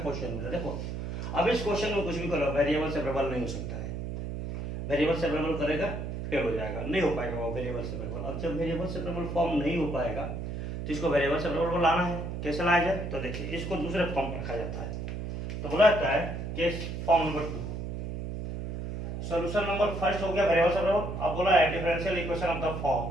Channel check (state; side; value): noise; right; hum, 5 dB below the sound